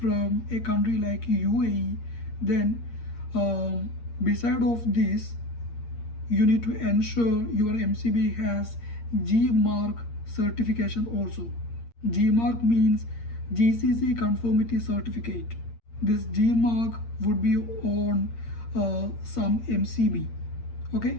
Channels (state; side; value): late; right; 8.6 ms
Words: a country like UAE, then beside of this, you need to ensure your MCB has G mark certification also. G mark means GCC conformity certificate. This G mark would be on some MCB,